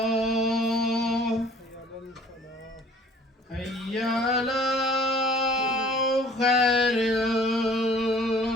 حي على خير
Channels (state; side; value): normal; both; correlation 0.53